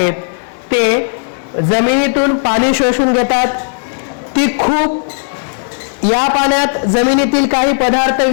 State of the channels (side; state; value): right; silent; digital silence